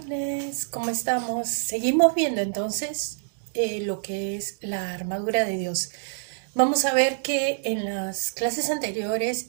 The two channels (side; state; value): left; silent; digital silence